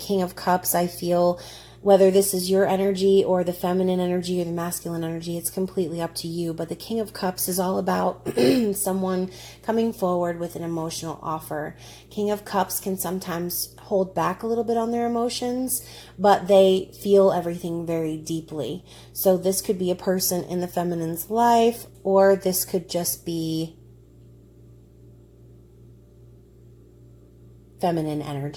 of Cups, I feel whether this is your energy or the feminine energy or the masculine energy, it's completely up to you. But the King of Cups is all about someone coming forward with an emotional offer. King of Cups can sometimes hold back a little bit on their emotions, but they feel everything very deeply. So this could be a person in the feminine's life, or this could just be feminine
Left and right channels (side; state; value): both; identical; correlation 1.00